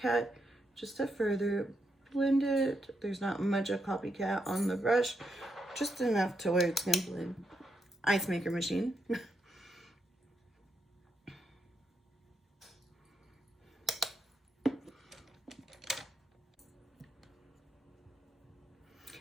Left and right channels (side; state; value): both; normal; correlation 0.82